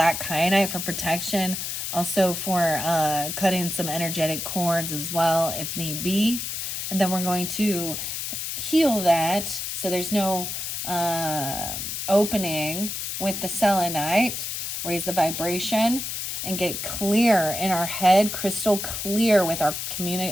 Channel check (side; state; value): left; noise; hiss, 4 dB below the sound